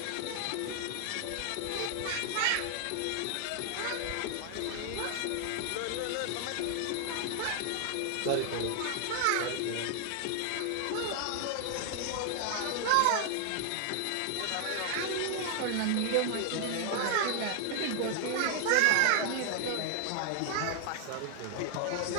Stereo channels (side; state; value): both; different; correlation 0.00